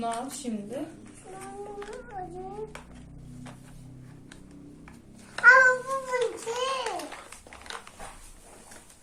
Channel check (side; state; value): both; identical; correlation 1.00